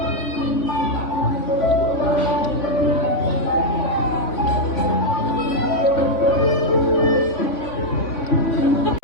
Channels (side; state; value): right; late; 3.5 ms